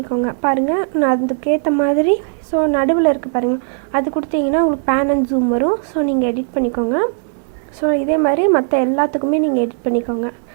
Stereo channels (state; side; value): silent; left; digital silence